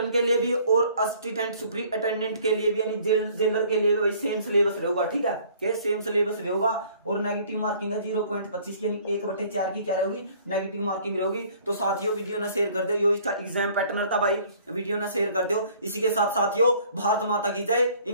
के लिए भी और असिस्टेंट सुपरिटेंडेंट के लिए भी यानी जेलर के लिए भी भाई सेम सिलेबस रहेगा, ठीक है, के सेम सिलेबस रहेगा। और नेगेटिव मार्किंग है 0.25 यानी 1/4 की क्या रहेगी नेगेटिव मार्किंग रहेगी। तो साथियों वीडियो ना शेयर कर दो, यो इसका एग्जाम पैटर्न था भाई, वीडियो ना शेयर कर दो। इसी के साथ साथियों भारत माता की जय,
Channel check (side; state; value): both; inverted; correlation -0.56